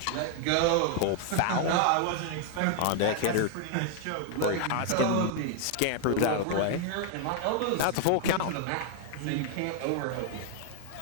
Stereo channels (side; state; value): both; different; correlation 0.00